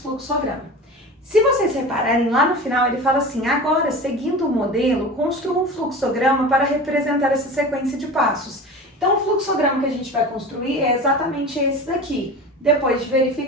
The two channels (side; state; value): both; normal; correlation 0.33